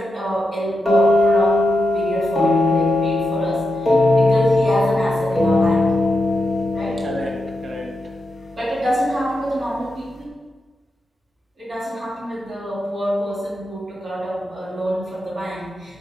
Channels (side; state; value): both; normal; correlation 0.87